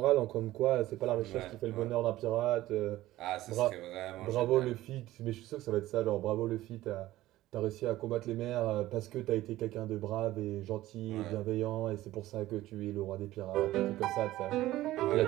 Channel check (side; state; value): left; quieter; 15.9 dB